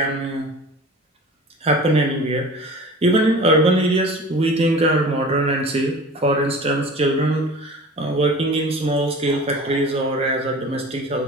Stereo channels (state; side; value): normal; both; correlation 0.39